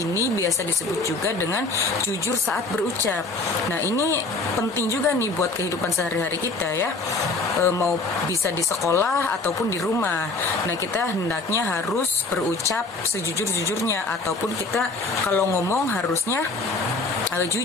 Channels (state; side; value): quieter; right; 3.5 dB